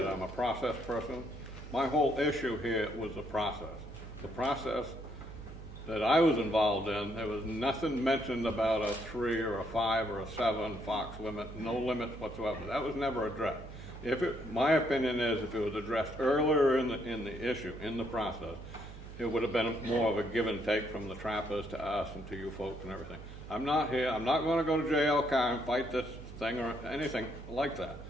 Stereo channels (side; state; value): right; noise; hum, 13 dB below the sound